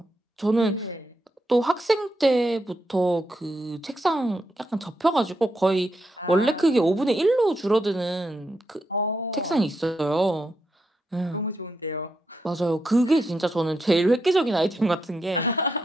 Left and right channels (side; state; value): both; normal; correlation 0.82